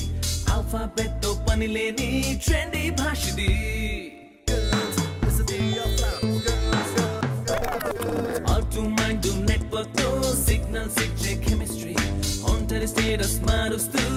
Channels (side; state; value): both; identical; correlation 1.00